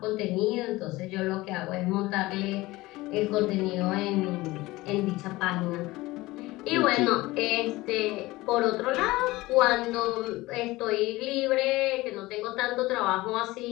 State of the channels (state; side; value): quieter; right; 19.6 dB